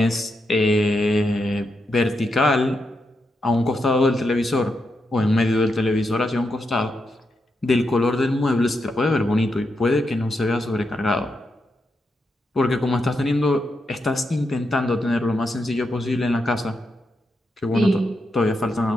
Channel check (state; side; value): normal; both; correlation 0.84